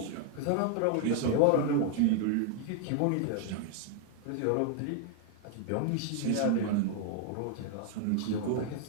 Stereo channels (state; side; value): different; both; correlation 0.00